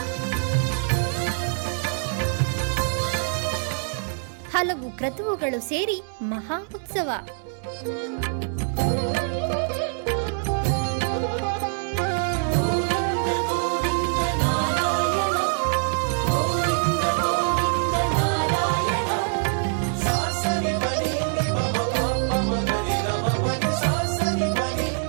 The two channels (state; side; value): silent; left; 62 dB below the other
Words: ಹಲವು ಕ್ರತುವುಗಳು ಸೇರಿ ಮಹಾ ಉತ್ಸವ.